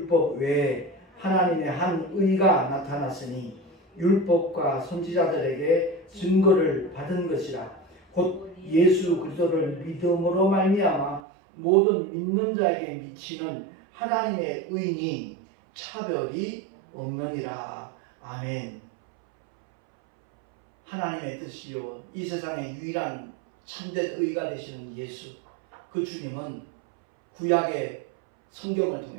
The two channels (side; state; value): left; drops out; at 11.2 s